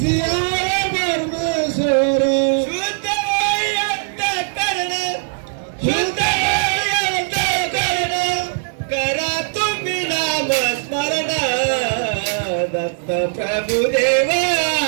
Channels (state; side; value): silent; left; digital silence